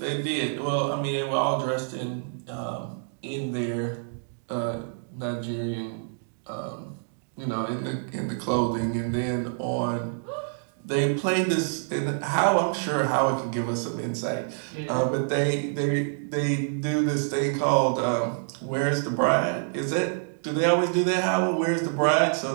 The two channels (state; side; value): silent; left; digital silence